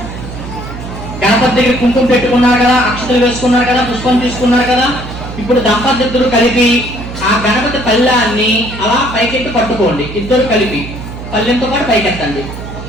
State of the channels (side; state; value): right; noise; hum, 10 dB below the sound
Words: గణపతి దగ్గర కుంకుమ పెట్టుకున్నారు కదా, అక్షతలు వేసుకున్నారు కదా, పుష్పం తీసుకున్నారు కదా. ఇప్పుడు దంపతులు కలిపి ఆ గణపతి పళ్ళాన్ని అలా పైకెత్తి పట్టుకోండి. ఇద్దరు కలిపి పళ్ళెంతో పాటు పైకెత్తండి